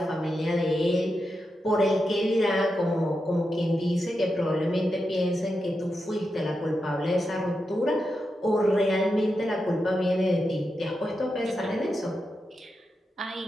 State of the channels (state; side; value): normal; both; correlation 0.87